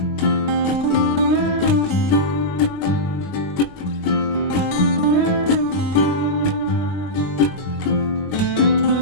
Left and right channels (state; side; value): late; right; 21 ms